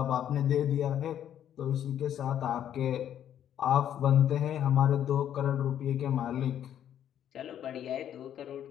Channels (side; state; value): right; quieter; 10.2 dB